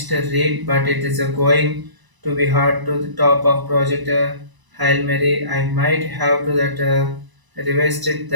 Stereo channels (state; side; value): late; left; 1.0 ms